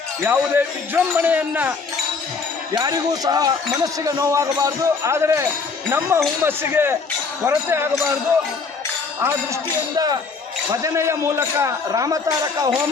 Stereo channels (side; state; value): right; quieter; 4.8 dB